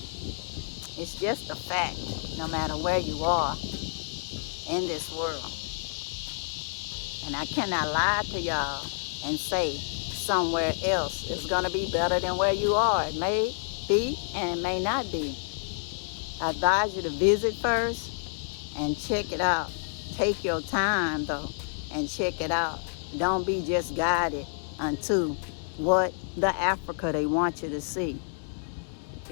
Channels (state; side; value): silent; right; digital silence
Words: It's just a fact, no matter where you are in this world. And I cannot lie to y'all and say somewhere else is gonna be better than where you are. It may be and it may not be. I advise you to visit first and check it out. Take your time though and check it out. Don't be just guided unto what the Africa they want you to see.